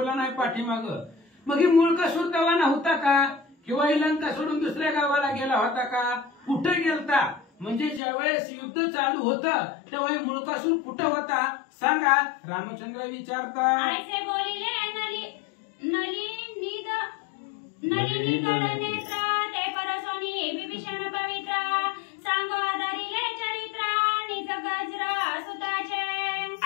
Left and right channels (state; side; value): drops out; right; at 8.0 s